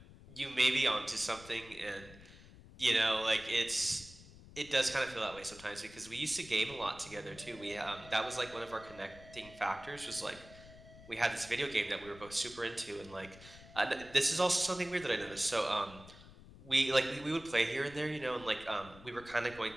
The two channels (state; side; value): noise; left; rumble, 19 dB below the sound